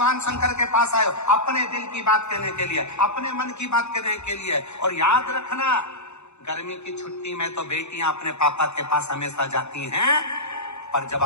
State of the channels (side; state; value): right; late; 0.82 ms